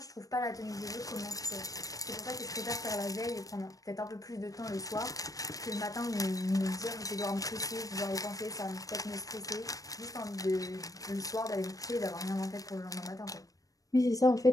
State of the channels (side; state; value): right; late; 0.17 ms